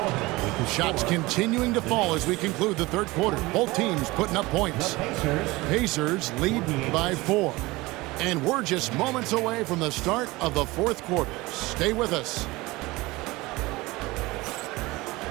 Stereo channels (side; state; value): left; quieter; 21.3 dB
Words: Shots continuing to fall as we conclude the third quarter. Both teams putting up points. Pacers lead by 4. And we're just moments away from the start of the fourth quarter. Stay with us.